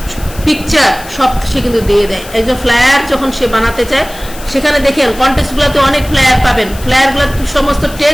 পিকচার সব সে কিন্তু দিয়ে দেয়। একজন ফ্লায়ার যখন সে বানাতে চায়, সেখানে দেখেন কন্টেক্সটগুলোতে অনেক ফ্লায়ার পাবেন, ফ্লায়ারগুলো সমস্ত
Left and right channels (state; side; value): noise; left; hiss, 17 dB below the sound